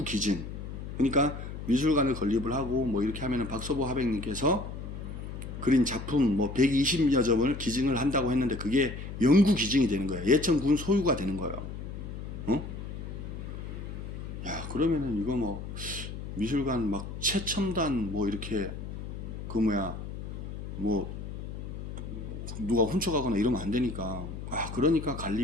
기준. 그러니까 미술관을 건립을 하고 뭐 이렇게 하면은 박서보 하백님께서 그린 작품 뭐 120여 점을 기증을 한다고 했는데 그게 연구 기증이 되는 거예요. 예천군 소유가 되는 거예요. 야, 그러면은 이거 뭐 미술관 막 최첨단 뭐 이렇게 그 뭐 누가 훔쳐가거나 이러면 안 되니까 그러니까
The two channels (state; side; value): noise; left; hum, 8 dB below the sound